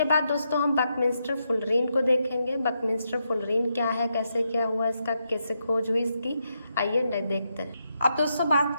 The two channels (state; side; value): inverted; both; correlation -0.82